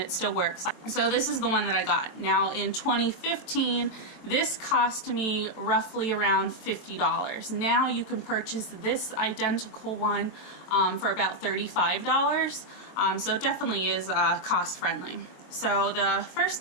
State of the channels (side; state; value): right; late; 23 ms